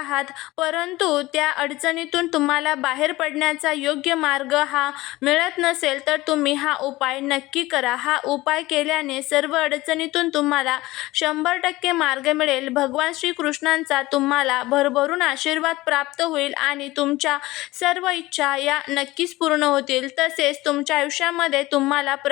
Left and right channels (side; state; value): right; quieter; 19.0 dB